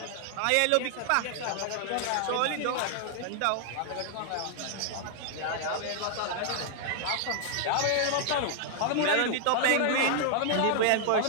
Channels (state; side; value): different; both; correlation 0.00